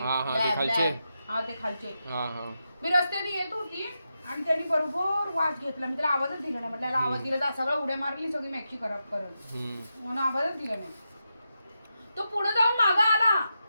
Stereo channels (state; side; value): inverted; both; correlation -0.87